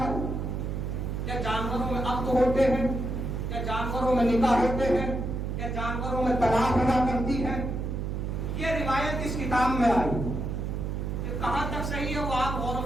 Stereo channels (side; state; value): right; noise; hum, 3 dB below the sound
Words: ہے؟ یا جانوروں میں عقد ہوتے ہیں؟ کیا جانوروں میں نکاح ہوتے ہیں؟ کیا جانوروں میں طلاق ہوا کرتی ہے؟ یہ روایت اس کتاب میں آئی کہ کہاں تک صحیح ہے وہ آپ غور